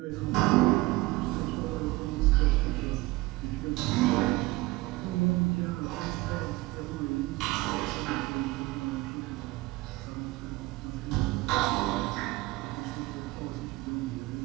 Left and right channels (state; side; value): quieter; left; 20.8 dB